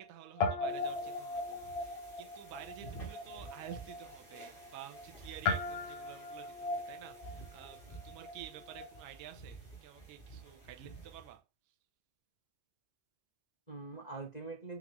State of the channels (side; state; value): right; late; 2.6 ms